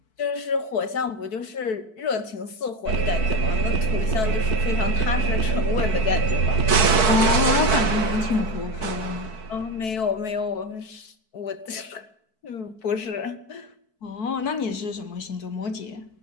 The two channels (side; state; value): right; late; 4.6 ms